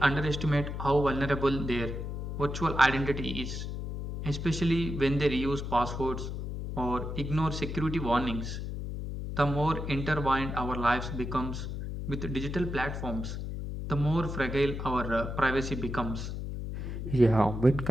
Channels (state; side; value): noise; left; hum, 5 dB below the sound